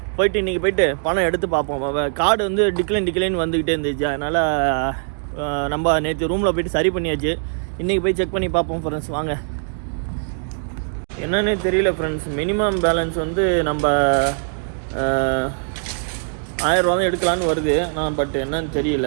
இன்றைக்கி போயிட்டு பணம் எடுத்து பார்ப்போம். கார்டு வந்து டிக்ளைன் வந்துக்கிட்டே இருந்துச்சு. அதனால் நம்ம நேற்று ரூமில் போய்ட்டு சரி பண்ணியாச்சு. இன்றைக்கி போய் செக் பண்ணி பார்ப்போம் ஃப்ரெண்ட்ஸ். வாங்க. என்னன்னே தெரியல ஃப்ரெண்ட்ஸ், மினிமம் பேலன்ஸ் வந்து நம்ம 1000 ரூபா தான் எடுக்கலான்னு வருது. நான் பட் என்னன்னு தெரியல,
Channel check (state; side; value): silent; left; digital silence